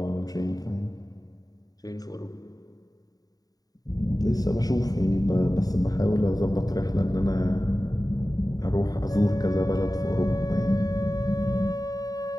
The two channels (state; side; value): late; right; 0.18 ms